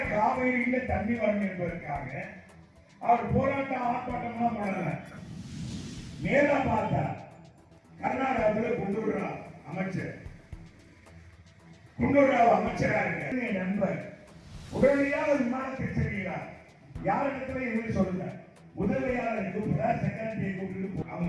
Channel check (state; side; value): identical; both; correlation 1.00